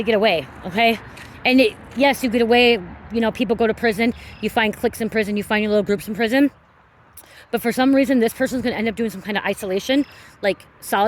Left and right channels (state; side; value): identical; both; correlation 1.00